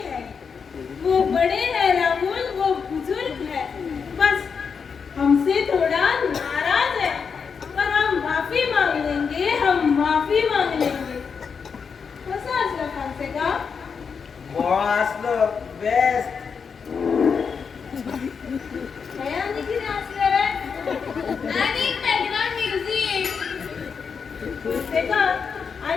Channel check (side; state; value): right; quieter; 6.0 dB